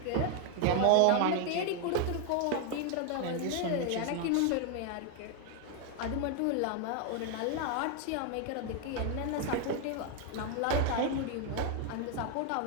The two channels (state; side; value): different; both; correlation 0.01